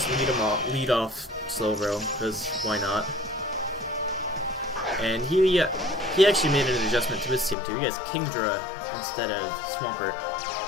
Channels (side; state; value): right; drops out; at 7.6 s